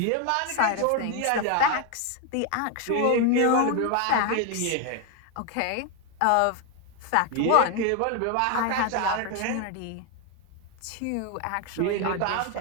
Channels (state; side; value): different; both; correlation 0.01